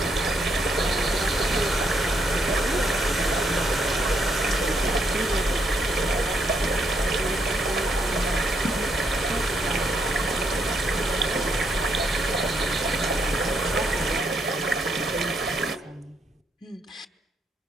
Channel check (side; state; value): both; normal; correlation 0.76